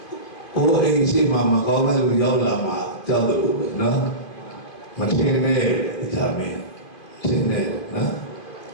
အိုးအိမ်ရှိမှမကောင်းတဲ့လူရောက်လာမှကြောက်တယ်လို့ပဲနော်မထင်နဲ့တရားမင်းထင်နဲ့နော်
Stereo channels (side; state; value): right; late; 2.5 ms